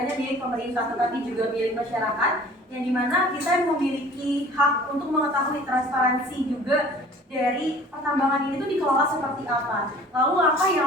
hanya milik pemerintah tetapi juga milik masyarakat, yang dimana kita memiliki hak untuk mengetahui transparansi juga dari pertambangan ini tuh dikelola seperti apa. Lalu apa yang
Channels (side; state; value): both; normal; correlation 0.48